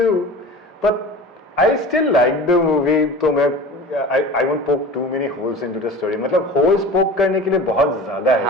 But I still like the movie. तो मैं I won't poke too many holes into the story. मतलब holes poke करने के लिए बहुत ज्यादा है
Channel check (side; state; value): both; normal; correlation 0.36